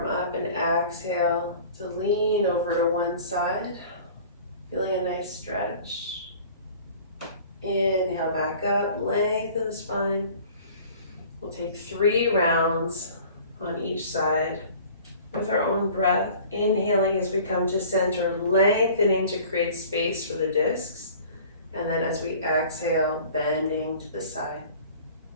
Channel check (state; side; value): inverted; both; correlation -0.46